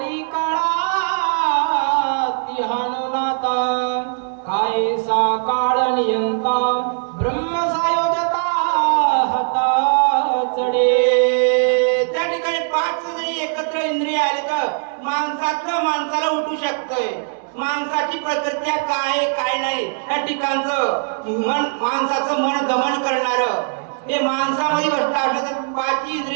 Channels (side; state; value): left; silent; 66 dB below the other